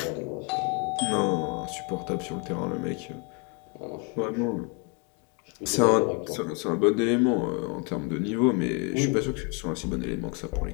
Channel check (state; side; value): quieter; right; 32.6 dB